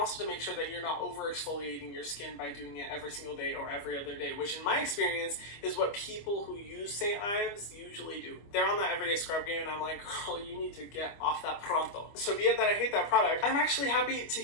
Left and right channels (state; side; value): late; right; 25 ms